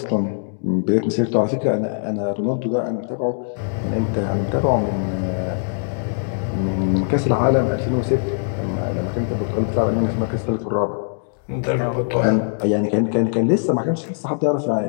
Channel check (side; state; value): right; silent; digital silence